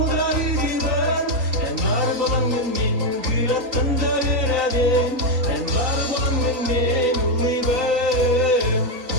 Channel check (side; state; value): left; late; 3.8 ms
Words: yüzüben. Ben var bulanın din kül attında bir adel. Ben var bulanın din uliben.